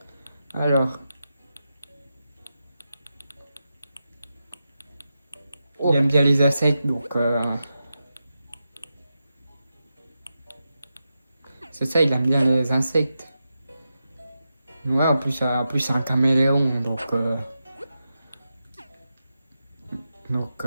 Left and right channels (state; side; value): inverted; both; correlation -0.89